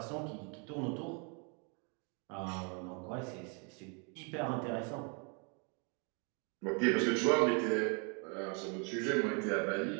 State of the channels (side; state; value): left; quieter; 35.6 dB